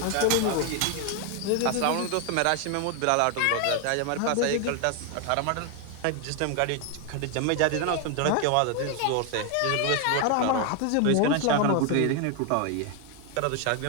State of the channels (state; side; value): different; both; correlation 0.01